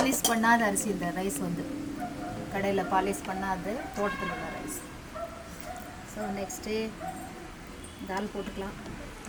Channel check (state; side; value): identical; both; correlation 1.00